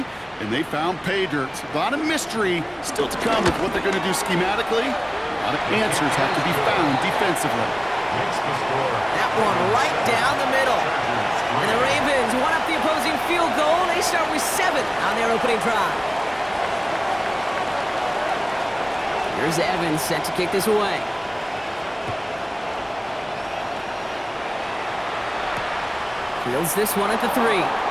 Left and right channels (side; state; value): both; identical; correlation 1.00